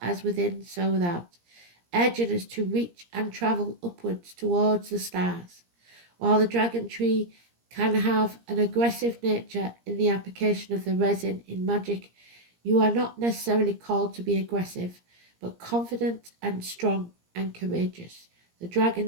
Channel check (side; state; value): left; late; 17 ms